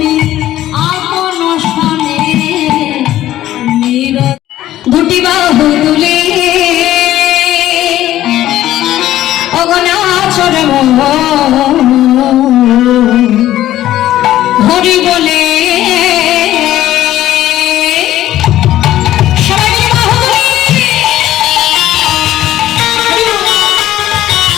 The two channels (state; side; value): quieter; right; 13.7 dB